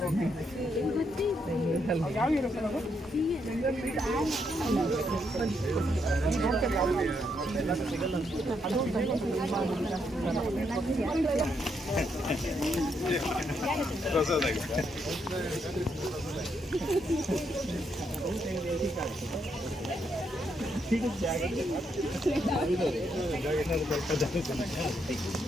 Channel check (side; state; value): both; normal; correlation 0.77